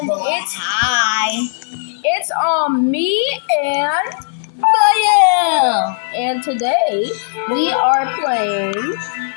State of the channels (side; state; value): right; silent; digital silence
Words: Hi. it's me and and today we are playing